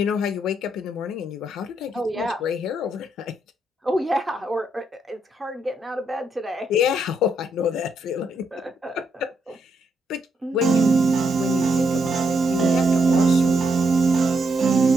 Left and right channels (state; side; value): normal; both; correlation 0.78